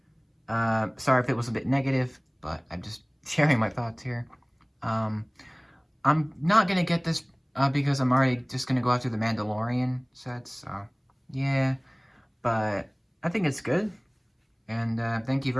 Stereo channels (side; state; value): both; identical; correlation 1.00